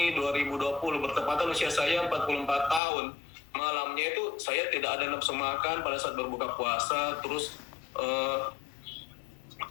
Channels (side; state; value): right; drops out; at 2.8 s